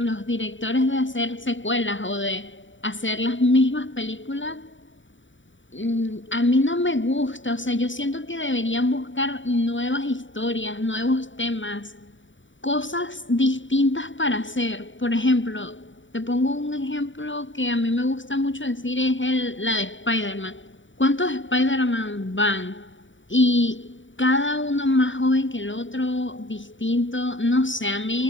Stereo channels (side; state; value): right; late; 0.55 ms